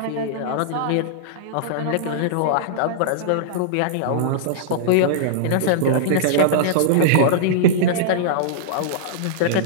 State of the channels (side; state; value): both; different; correlation -0.02